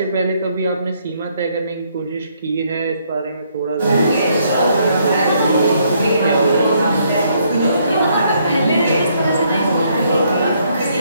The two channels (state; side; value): inverted; both; correlation -0.70